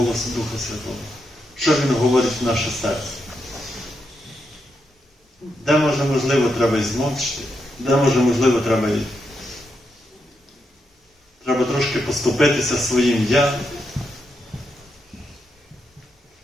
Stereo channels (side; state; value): both; normal; correlation 0.83